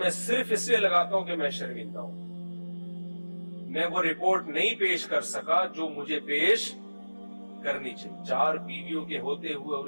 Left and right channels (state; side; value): inverted; both; correlation -1.00